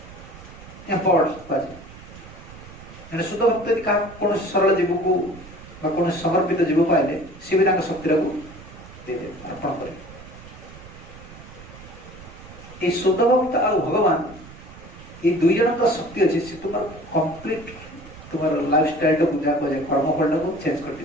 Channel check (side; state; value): right; noise; rumble, 18 dB below the sound